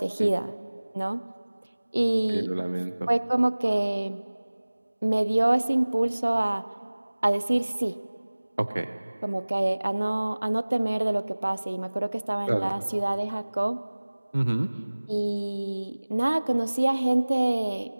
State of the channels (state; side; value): inverted; both; correlation -1.00